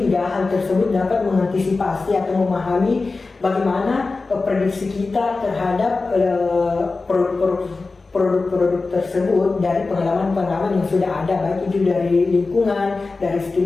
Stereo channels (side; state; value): right; quieter; 3.8 dB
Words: hal tersebut dapat mengantisipasi atau memahami bagaimana prediksi kita terhadap produk-produk tersebut dari pengalaman-pengalaman yang sudah ada, baik itu dari lingkungan, dari